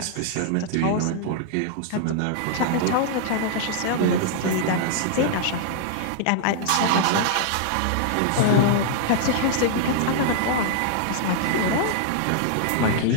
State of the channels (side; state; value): both; different; correlation -0.01